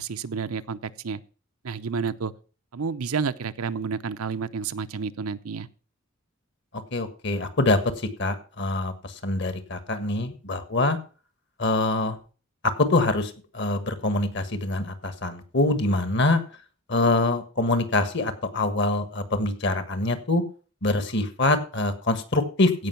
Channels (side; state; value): both; normal; correlation 0.22